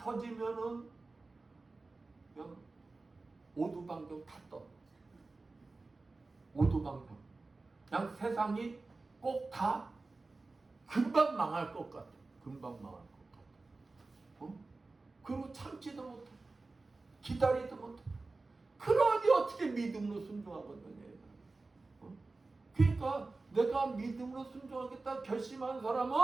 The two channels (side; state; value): left; quieter; 3.5 dB